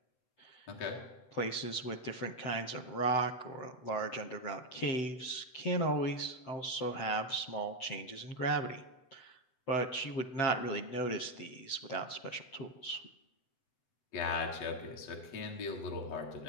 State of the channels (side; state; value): right; late; 7.8 ms